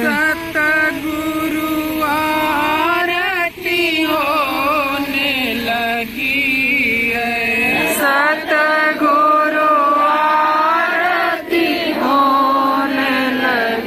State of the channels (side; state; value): both; identical; correlation 1.00